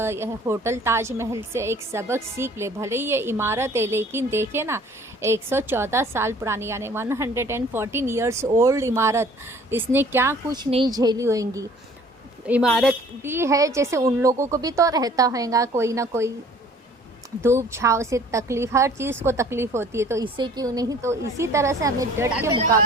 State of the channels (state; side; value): normal; both; correlation 0.52